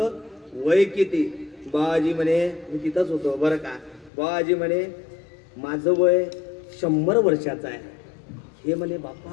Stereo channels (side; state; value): right; drops out; at 4.1 s